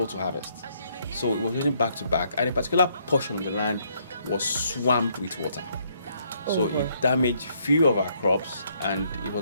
to harvest. So it was raining back to back, and a particular portion of the land was swamped with water. So it damaged few of our crops, and it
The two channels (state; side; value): inverted; both; correlation -0.70